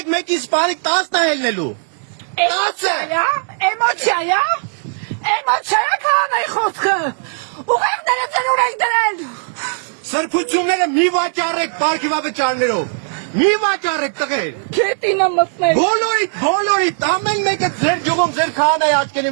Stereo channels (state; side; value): silent; left; digital silence